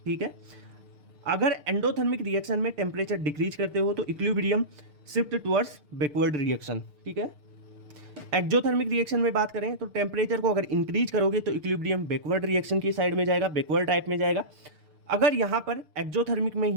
ठीक है। अगर एंडोथर्मिक रिएक्शन में टेम्परेचर डिक्रीज करते हो तो equilibrium shift towards backward reaction, ठीक है। एक्जोथर्मिक रिएक्शन में बात करें तो टेम्परेचर को अगर इंक्रीज करोगे तो इक्विलिब्रियम बैकवर्ड रिएक्शन की साइड में जाएगा, बैकवर्ड टाइप में जाएगा। अगर यहाँ पर एक्जोथर्मिक में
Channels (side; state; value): left; late; 6.7 ms